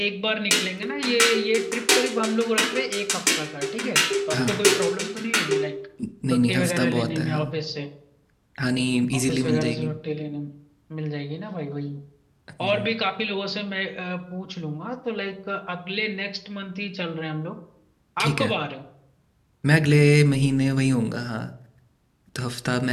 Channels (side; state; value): both; identical; correlation 1.00